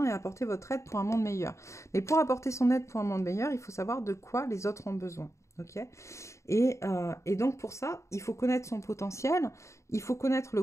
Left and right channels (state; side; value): late; right; 0.14 ms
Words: et apportez votre aide pour un monde meilleur. Mais pour apporter son aide pour un monde meilleur, il faut savoir de quoi les autres ont besoin. Ok, et donc pour ça, il faut connaître son potentiel, il faut connaître le